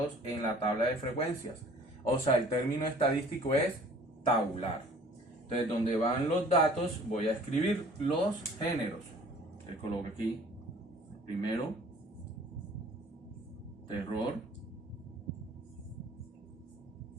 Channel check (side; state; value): both; normal; correlation 0.51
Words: en la tabla de frecuencias. O sea, el término estadístico es tabular. Entonces, donde van los datos, voy a escribir los géneros. Le coloco aquí, primero, terror,